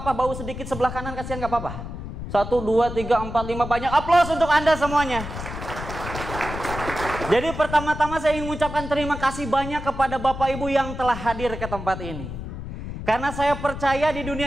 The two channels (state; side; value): noise; left; rumble, 8 dB below the sound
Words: bau sedikit sebelah kanan, kasihan gak apa-apa. 1, 2, 3, 4, 5, banyak aplaus untuk Anda semuanya. Jadi pertama-tama saya ingin mengucapkan terima kasih banyak kepada Bapak Ibu yang telah hadir ke tempat ini. Karena saya percaya di